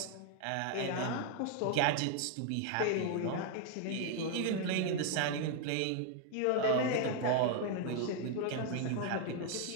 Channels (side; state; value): both; different; correlation 0.00